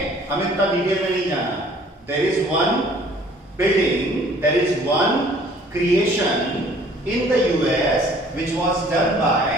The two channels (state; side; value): normal; both; correlation 0.55